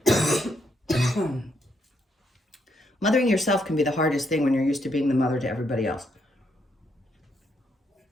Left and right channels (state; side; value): normal; both; correlation 0.76